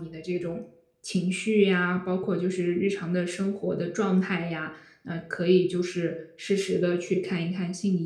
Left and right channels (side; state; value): both; identical; correlation 1.00